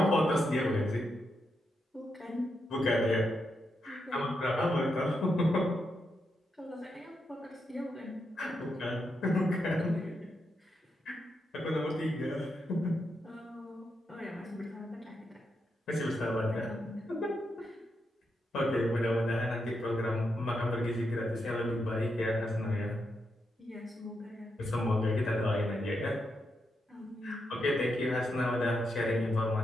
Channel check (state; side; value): normal; both; correlation 0.83